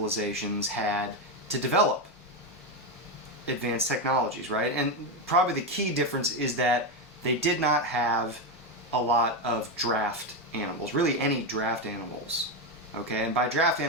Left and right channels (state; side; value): normal; both; correlation 0.10